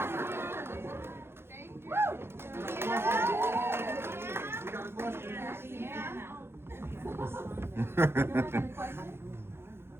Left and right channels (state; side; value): late; left; 0.12 ms